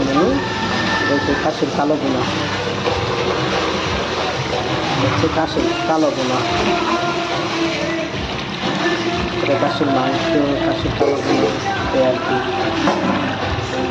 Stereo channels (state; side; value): identical; both; correlation 1.00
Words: মেনু হচ্ছে খাসির কালো বুনা, হচ্ছে খাসির কালো বোনা, এটা খাসির মাংস, খাসির কালো বোনা আর কি।